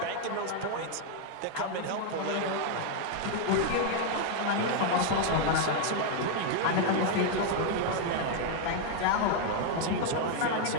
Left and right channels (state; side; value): different; both; correlation 0.00